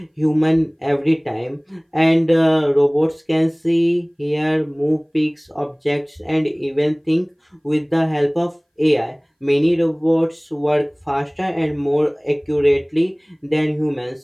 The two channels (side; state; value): both; identical; correlation 1.00